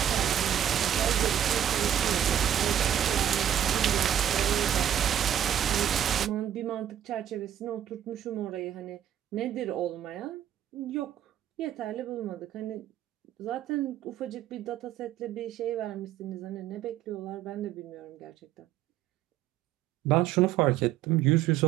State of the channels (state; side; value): quieter; left; 10.4 dB